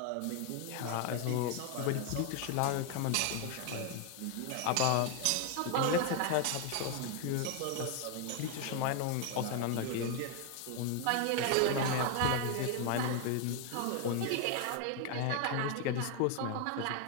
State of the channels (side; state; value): both; different; correlation 0.01